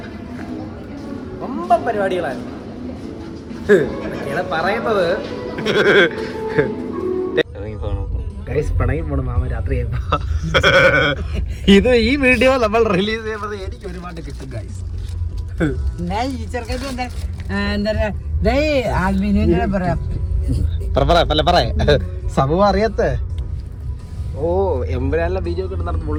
ரொம்ப പരിപാടികളാണ് പറയുന്നത്. ഗൈസ് പിണങ്ങി പോണ മാമ രാത്രി ഇത് ഈ വീഡിയോ നമ്മൾ റിലീസ് ചെയ്യുമ്പോൾ എനിക്ക് ഒരുപാട് കിട്ടും ഗൈസ്. സംഭവം അറിയാത്ത ഓ എമ്പുരാനിലെ വീഡിയോ ഒക്കെ നടന്ന്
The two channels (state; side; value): identical; both; correlation 1.00